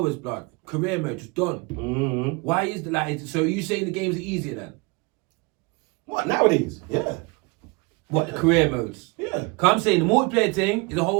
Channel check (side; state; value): left; quieter; 28.4 dB